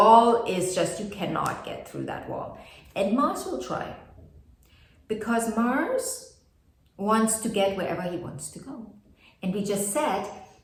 is just, you cannot get through that wall. And Mars will try, because Mars wants to get wherever he wants to go. And we just said,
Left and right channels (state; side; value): identical; both; correlation 1.00